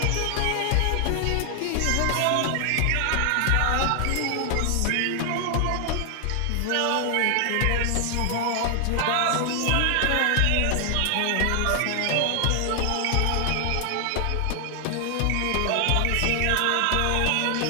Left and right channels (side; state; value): both; different; correlation 0.00